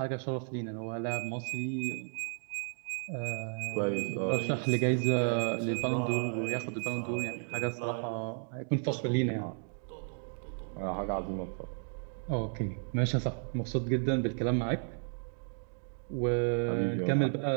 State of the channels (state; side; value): silent; left; digital silence